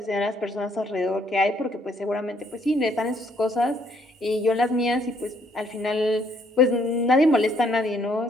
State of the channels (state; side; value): normal; both; correlation 0.68